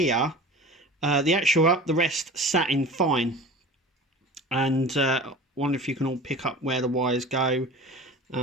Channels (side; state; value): both; normal; correlation 0.38